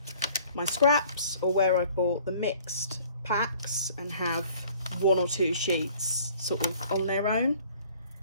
my scraps, or where I bought the mixed packs and have one or two sheets sort of on their own.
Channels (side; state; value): both; inverted; correlation -0.53